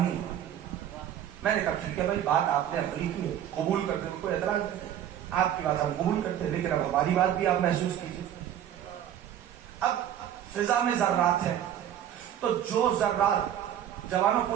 ہے. میں نے کہا ٹھیک ہے بھائی، بات آپ نے عملی کی ہے، قبول کرتے ہیں، کوئی اعتراض نہیں، آپ کی بات ہم قبول کرتے ہیں، لیکن اب ہماری بات بھی آپ محسوس کیجیے. اب فضا میں ذرات ہیں، تو جو ذرات، جوانوں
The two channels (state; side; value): quieter; left; 10.5 dB